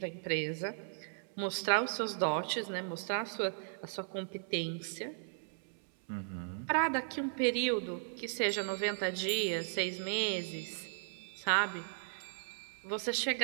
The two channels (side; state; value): left; silent; 53 dB below the other